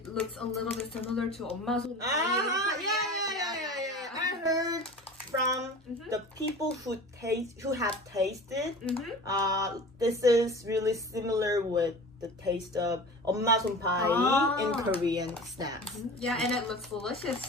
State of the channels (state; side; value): normal; both; correlation 0.37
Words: looks a little bit similar to 엄마 손. Yeah. I heard from the people who have tasted. This is really similar with the taste of 엄마 손파이 in Korean snacks. Yeah, and it looks delicious.